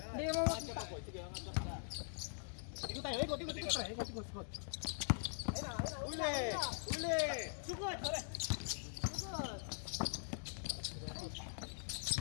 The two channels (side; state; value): right; silent; digital silence